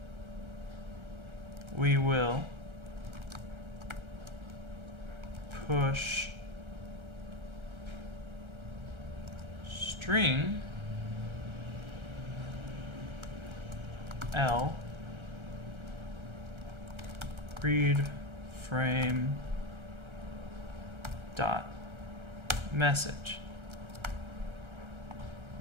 we will push string L read frame dot message.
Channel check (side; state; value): left; late; 1.3 ms